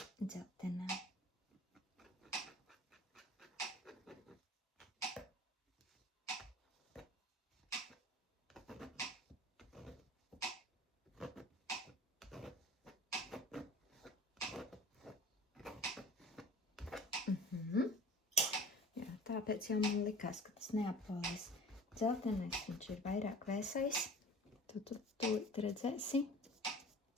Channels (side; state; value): both; normal; correlation 0.43